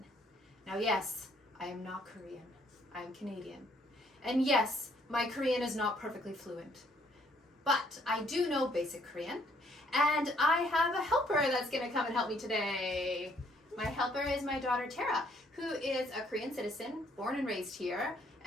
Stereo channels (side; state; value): both; normal; correlation 0.66